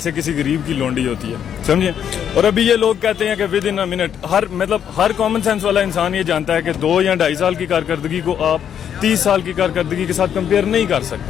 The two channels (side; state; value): right; quieter; 8.9 dB